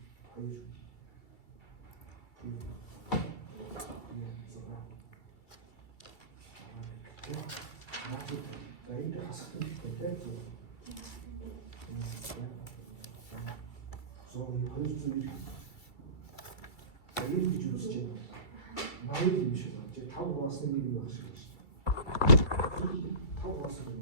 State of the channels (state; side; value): late; right; 2.3 ms